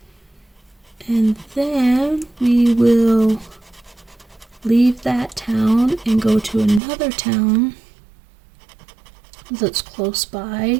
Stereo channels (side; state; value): left; drops out; at 6.8 s